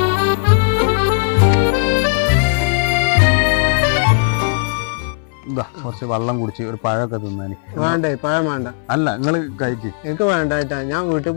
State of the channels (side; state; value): right; silent; 63 dB below the other